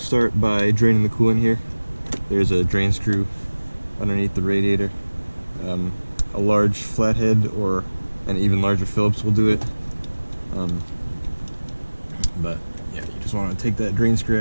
by draining the coolant here. There's a drain screw underneath the radiator. A large flathead or an even larger Phillips will do it. But yeah, you just wanna take that drain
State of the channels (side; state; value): both; inverted; correlation -1.00